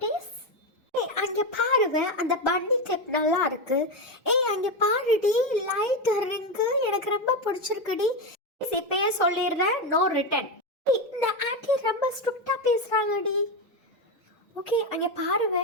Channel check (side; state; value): both; normal; correlation 0.12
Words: அங்க பாருங்க, அந்த பன்னி கிளிப் நல்லா இருக்கு. அங்க பாருடி, லைட் ரிங்கு எனக்கு ரொம்ப பிடிச்சிருக்குடி. இப்பயே சொல்லிடுறேன், நோ ரிட்டன். இந்த ஆண்டி ரொம்ப ஸ்ட்ரிக்டா பேசுறாங்கடி. ஓகே, அங்க பாருங்க,